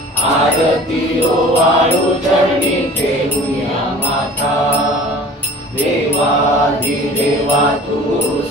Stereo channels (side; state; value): both; normal; correlation 0.45